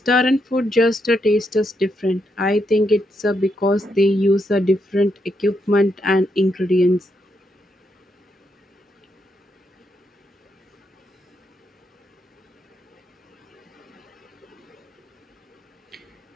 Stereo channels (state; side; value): normal; both; correlation 0.80